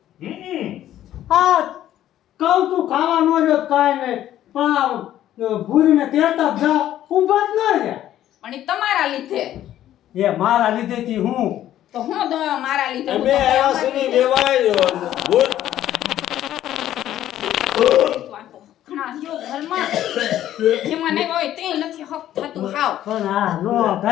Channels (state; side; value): quieter; right; 12.3 dB